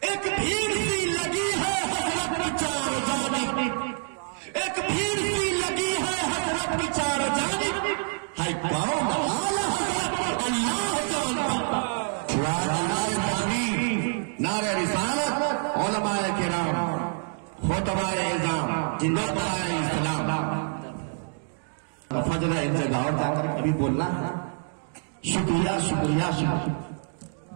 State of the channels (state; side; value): silent; left; 60 dB below the other